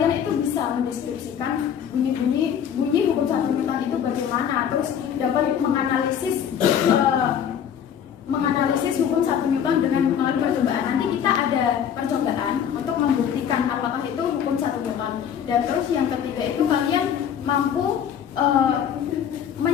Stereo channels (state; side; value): quieter; right; 8.6 dB